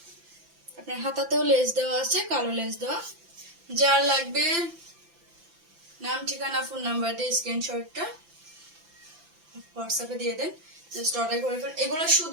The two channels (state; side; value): late; left; 5.9 ms